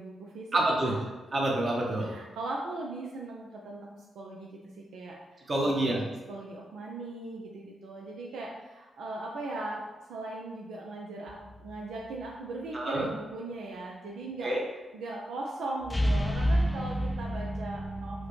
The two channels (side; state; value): both; normal; correlation 0.86